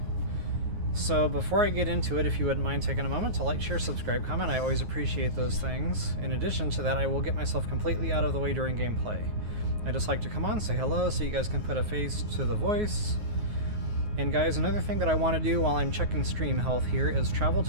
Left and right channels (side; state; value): left; late; 9.4 ms